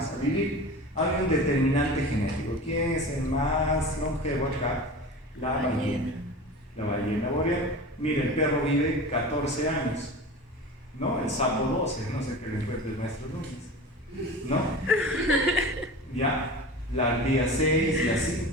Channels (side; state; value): both; normal; correlation 0.33